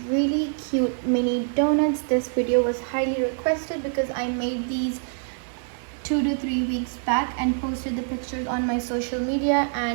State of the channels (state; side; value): silent; left; 62 dB below the other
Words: really cute mini donuts. This video was highly requested because I made these 2 to 3 weeks back and posted the pictures on my social media,